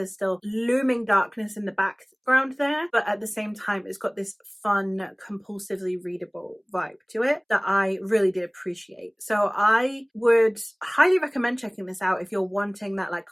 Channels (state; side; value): identical; both; correlation 1.00